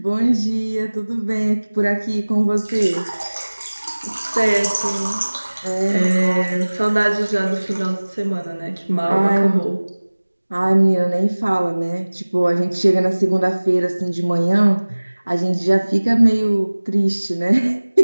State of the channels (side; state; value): both; inverted; correlation -1.00